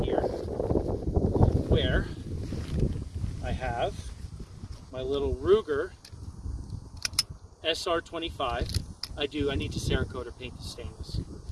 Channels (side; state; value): both; identical; correlation 1.00